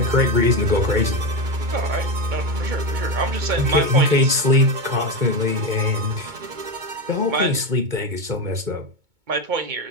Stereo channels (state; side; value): late; left; 2.2 ms